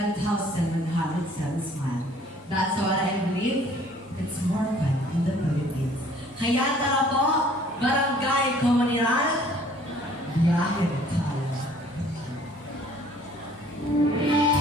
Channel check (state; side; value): normal; both; correlation 0.56